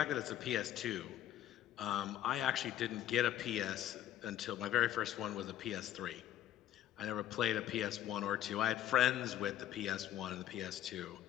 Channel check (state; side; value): quieter; right; 12.0 dB